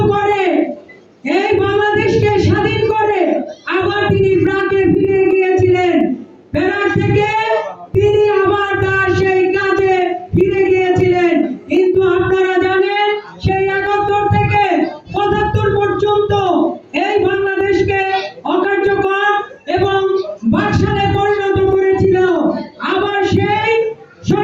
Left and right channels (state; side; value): identical; both; correlation 1.00